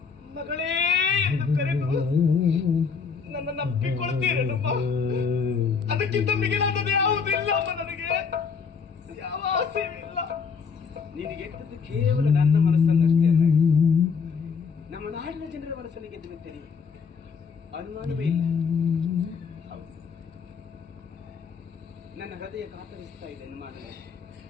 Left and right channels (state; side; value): quieter; right; 5.7 dB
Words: ಮಗಳೇ ಎಂದು ಕರೆದು ನನ್ನನ್ನು ಅಪ್ಪಿಕೊಳ್ತೀರೇನಮ್ಮ. ಅದಕ್ಕಿಂತ ಮಿಗಿಲಾದದ್ದು ಯಾವುದಿಲ್ಲ ಅಮ್ಮ. ನನಗೆ ಯಾವ ಆಸೆಯೂ ಇಲ್ಲ. ನಿನಗೆ ಗೆದ್ದದ್ದು ಕೇವಲ ನನ್ನ ಮನಸ್ಸನ್ನಷ್ಟೇ ಅಲ್ಲ, ನಮ್ಮ ನಾಡಿನ ಜನರ ಮನಸ್ಸನ್ನು ಗೆದ್ದು ಬಿಟ್ಟೆ. ಅನುಮಾನವೇ ಇಲ್ಲ. ನನ್ನ ಹೃದಯ ಕಾತರಿಸ್ತಾ ಇದೆ, ಅನುಮಾನವೇ.